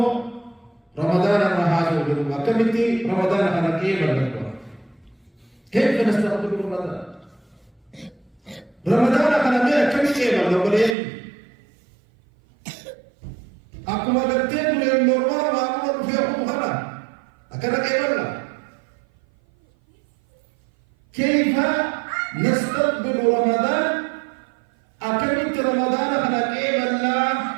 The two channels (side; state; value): left; drops out; at 11.0 s